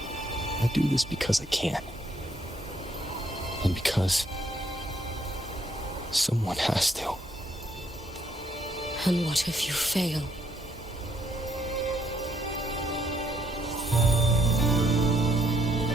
I do this because I can. And because someone has to. And what if you fail?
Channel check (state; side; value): normal; both; correlation 0.70